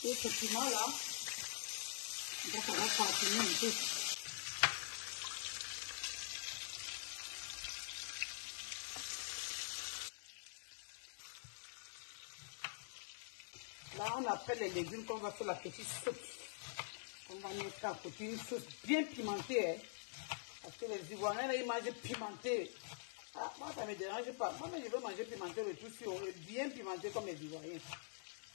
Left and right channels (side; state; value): right; silent; digital silence